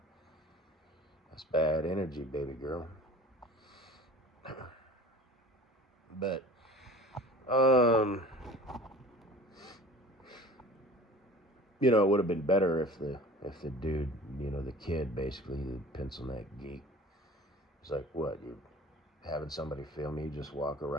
That's bad energy, baby girl. But it would have been better if the if the dude, the kid, basically, the pencil neck geek, is like, what, you having somebody film you just walking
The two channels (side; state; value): both; normal; correlation 0.42